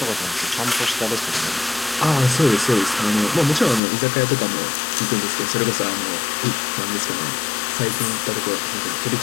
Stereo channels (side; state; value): right; drops out; at 3.8 s